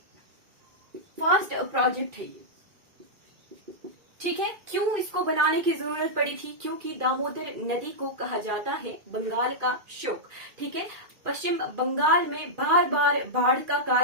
फर्स्ट प्रोजेक्ट है ये। ठीक है, क्यों इसको बनाने की जरूरत पड़ी थी? क्योंकि दामोदर नदी को कहा जाता है बंगाल का शोक। ठीक है, पश्चिम बंगाल में बार बार बाढ़ का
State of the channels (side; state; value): left; late; 2.5 ms